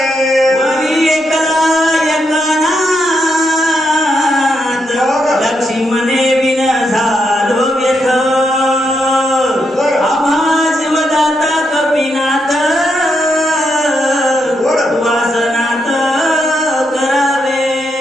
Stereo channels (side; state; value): both; normal; correlation 0.81